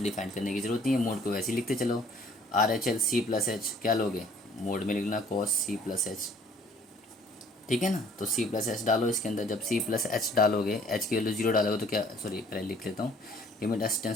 डिफाइन करने की जरूरत नहीं है। मोड को वैसे ही लिखते चलो, R H L c plus h, क्या लोगे, मोड में लिखना कॉस सी प्लस एच। ठीक है ना। तो सी प्लस एच डालो इसके अंदर। जब सी प्लस एच डालोगे, एच की वैल्यू जीरो डालोगे तो क्या, सॉरी पहले लिख लेता हूँ, limit h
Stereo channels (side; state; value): both; normal; correlation 0.57